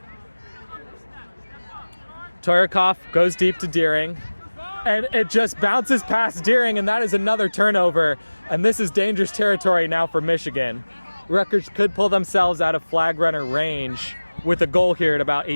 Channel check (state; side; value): inverted; both; correlation -1.00